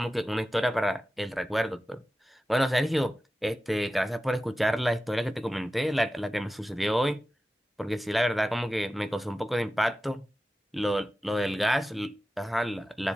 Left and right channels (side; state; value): both; normal; correlation 0.94